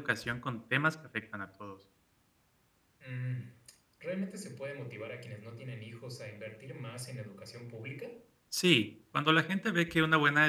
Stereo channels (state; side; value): identical; both; correlation 1.00